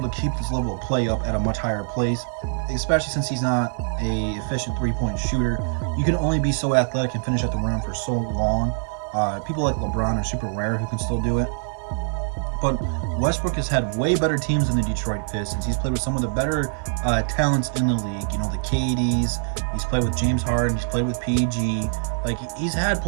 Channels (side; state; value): left; silent; 56 dB below the other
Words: to keep this level of play up at a much higher pace, especially since he's not a efficient three-point shooter. You can only be so athletic and finish at the rim for so long. People like LeBron are super rare who can still do it. But Westbrook has had way better teams than the Detroit Pistons. He's played with some of the better talents in the league. You know, the KDs. He's played with James Harden. He's played with PG. Like, he's had